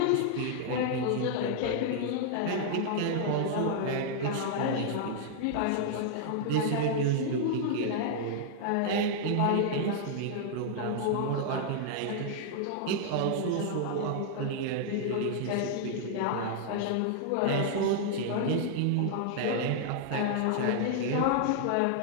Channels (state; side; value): different; both; correlation -0.01